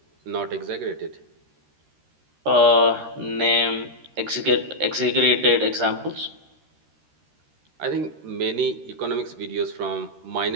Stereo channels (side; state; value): left; late; 13 ms